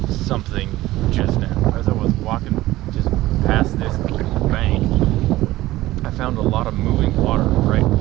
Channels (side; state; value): left; quieter; 16.8 dB